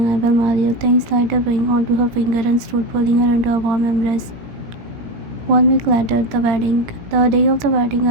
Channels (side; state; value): left; late; 17 ms